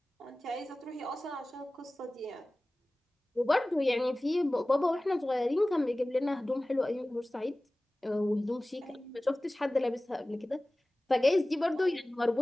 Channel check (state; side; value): normal; both; correlation 0.98